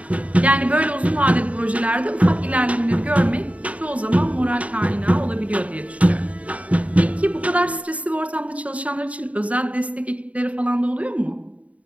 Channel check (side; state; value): left; late; 0.067 ms